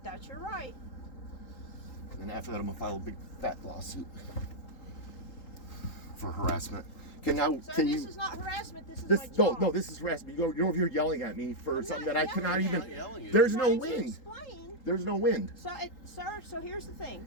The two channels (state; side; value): late; right; 3.8 ms